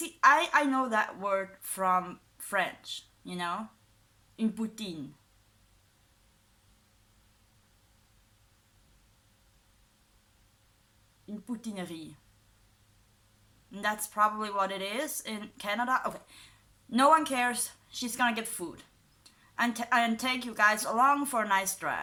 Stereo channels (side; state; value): both; identical; correlation 1.00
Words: I know that word from French, une poutine. Une poutinerie. And that's probably what it is in Canada. Okay, no one cares. She's gonna get food and take you guys along for a nice